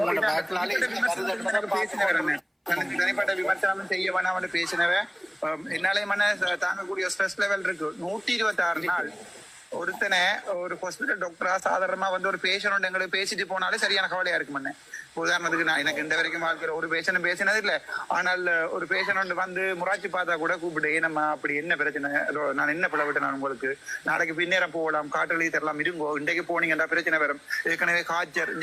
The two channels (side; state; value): both; identical; correlation 1.00